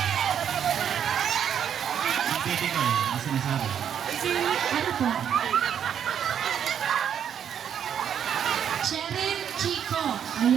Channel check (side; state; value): left; quieter; 8.7 dB